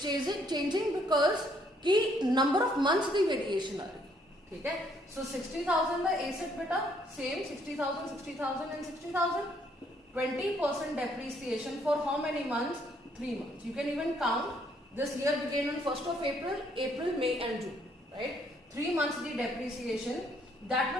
changing because कि number of months की variation आ रही है, ठीक है? So 60,000 का asset बेटा same 60,000, 60,000 and 60,000, 20% depreciation for how many months? 3 months. You can even count. This year began on 1st of April, May and June. Right? 3 months the depreciation that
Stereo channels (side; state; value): both; normal; correlation 0.68